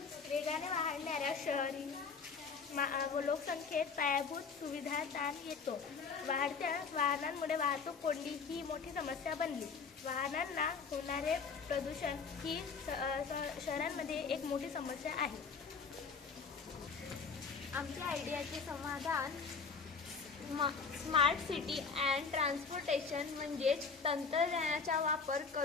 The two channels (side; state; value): right; quieter; 5.3 dB